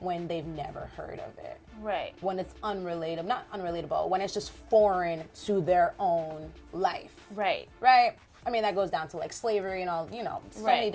they've never heard of it. Right. When it's not unrelatable, when it's just foreign to their own life. Right. Right? I mean, that goes down to like slavery and all, so Right. many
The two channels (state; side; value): identical; both; correlation 1.00